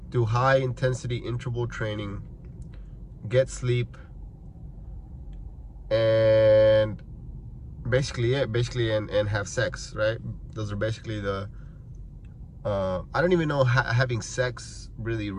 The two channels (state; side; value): identical; both; correlation 1.00